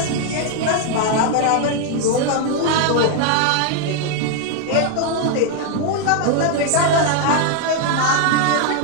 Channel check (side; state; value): both; different; correlation 0.00